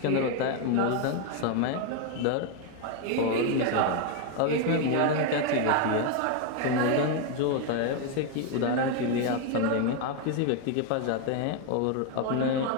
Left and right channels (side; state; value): both; different; correlation 0.01